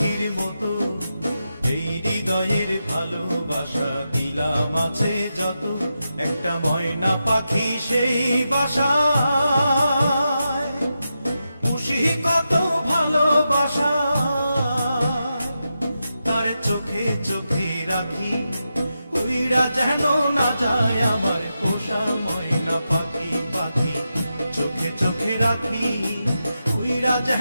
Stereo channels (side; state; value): both; inverted; correlation -0.88